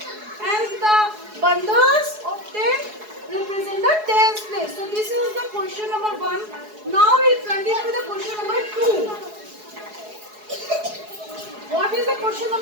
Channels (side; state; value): left; late; 4.7 ms